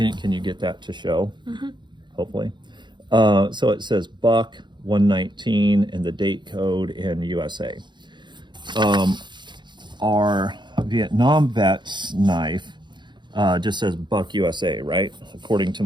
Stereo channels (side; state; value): left; late; 0.22 ms